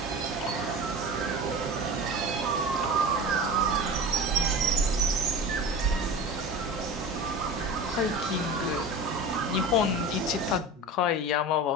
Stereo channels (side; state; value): both; normal; correlation 0.32